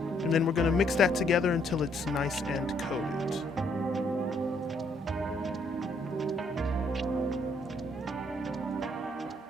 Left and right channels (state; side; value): normal; both; correlation 0.69